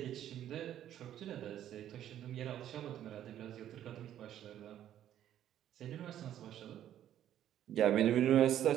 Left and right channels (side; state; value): left; quieter; 11.3 dB